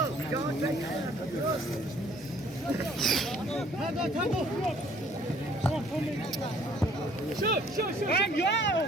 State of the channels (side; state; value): both; normal; correlation 0.59